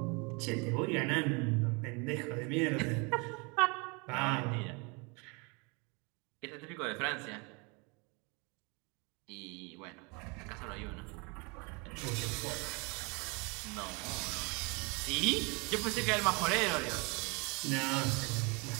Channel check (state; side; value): quieter; left; 30.3 dB